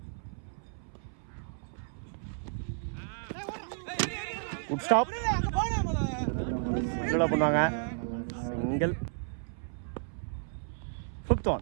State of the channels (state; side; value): silent; left; 56 dB below the other